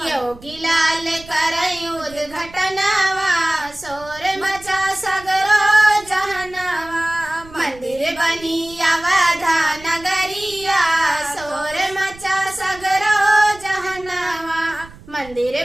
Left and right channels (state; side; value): noise; right; rumble, 20 dB below the sound